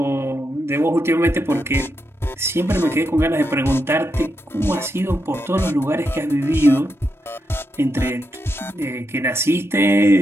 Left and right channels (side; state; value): both; normal; correlation 0.84